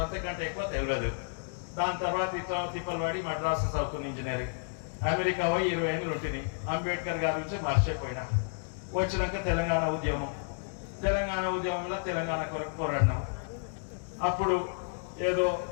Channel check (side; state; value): right; silent; digital silence